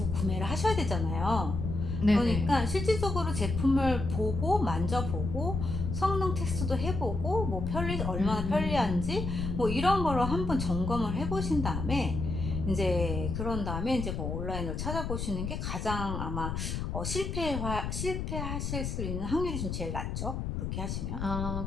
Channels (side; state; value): left; noise; rumble, 3 dB below the sound